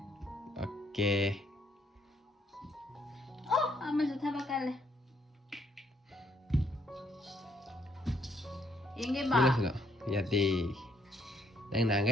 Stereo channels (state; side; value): normal; both; correlation 0.70